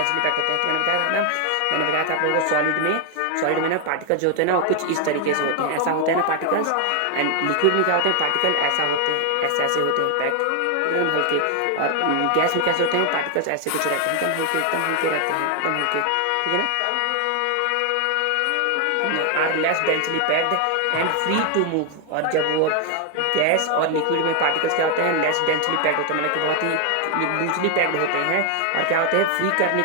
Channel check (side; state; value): both; different; correlation 0.01